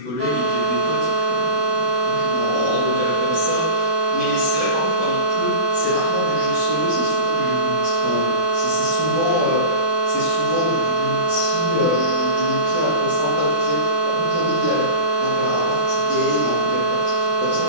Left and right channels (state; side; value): late; left; 5.8 ms